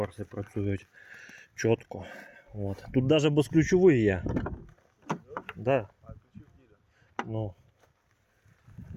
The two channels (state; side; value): identical; both; correlation 1.00